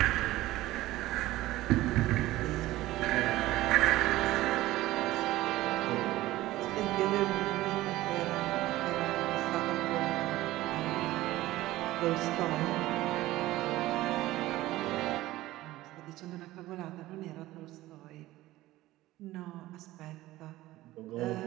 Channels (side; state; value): left; quieter; 16.8 dB